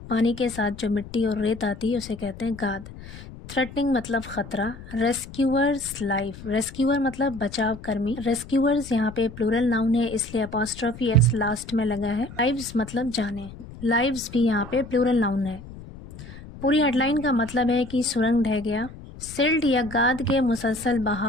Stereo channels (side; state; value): left; noise; rumble, 15 dB below the sound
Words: पानी के साथ जो मिट्टी और रेत आती है उसे कहते हैं गाद। थ्रेटनिंग मतलब खतरा। रेस्क्यूअर्स लाइफ, रेस्क्यूअर मतलब बचाव कर्मी। रेस्क्यूअर्स यहाँ पे प्लूरल नाउन है इसलिए अपॉस्ट्रोफी एस लास्ट में लगा है। लाइव्स मतलब जाने, लाइव्स भी यहाँ पे प्लूरल नाउन है। पूरी हेडलाइन का मतलब है कि सुरंग ढह गया, सिल्ट या गाद के मुसलसल